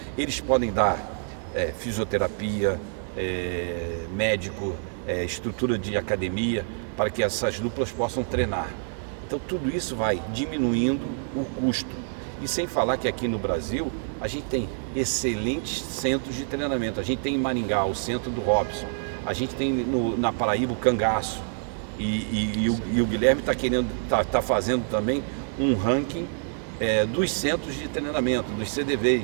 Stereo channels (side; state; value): left; silent; digital silence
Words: Eles podem dar fisioterapia, médico, estrutura de academia, para que essas duplas possam treinar. Então tudo isso vai diminuindo o custo. E sem falar que aqui no Brasil a gente tem excelentes centros de treinamento. A gente tem em Maringá o centro do Robson, a gente tem na Paraíba o Cangaço, e o Guilherme está fazendo também um ranking dos centros de treinamento, dos